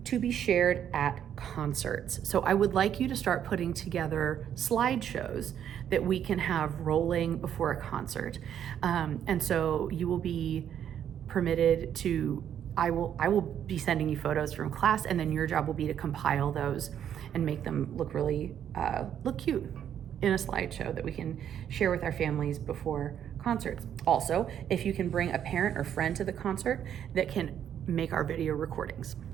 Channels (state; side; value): quieter; left; 9.5 dB